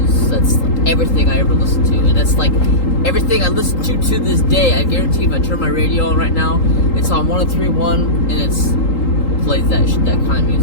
That's everything I ever listened to, and that's like everything I listen to this day. I guarantee if I turn my radio on right now, it's on 103.1, and it's plays that kind of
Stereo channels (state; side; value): late; right; 3.8 ms